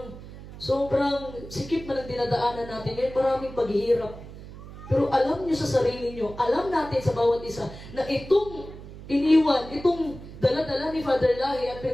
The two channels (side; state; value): right; noise; hum, 14 dB below the sound